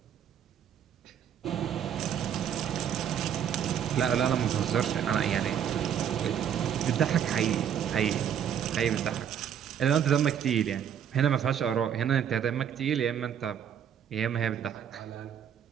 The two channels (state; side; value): quieter; left; 8.9 dB